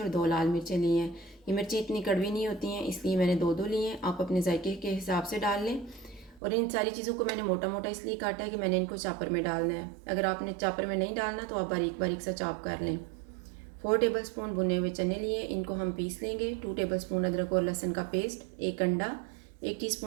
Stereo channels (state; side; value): drops out; left; at 6.4 s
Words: 2 लाल मिर्चें ली हैं। ये मिर्चें इतनी कड़वी नहीं होती हैं, इसलिए मैंने दो ली हैं। आप अपने जायके के हिसाब से डाल लें। और इन सारी चीज़ों को मैंने मोटा मोटा इसलिए काटा है कि मैंने इनको चापर में डालना है। अगर आपने चापर में नहीं डालना तो आप बारीक बारीक सा चॉप कर लें। 4 टेबलस्पून भुने हुए चने लिए, इनको हम पीस लेंगे। 2 टेबलस्पून अदरक और लहसुन का पेस्ट, एक अंडा, 1